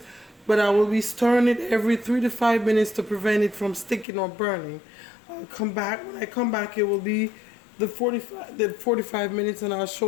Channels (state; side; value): drops out; right; at 4.0 s